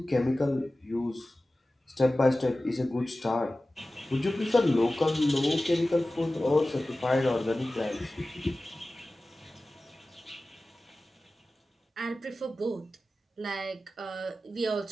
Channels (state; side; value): normal; both; correlation 0.96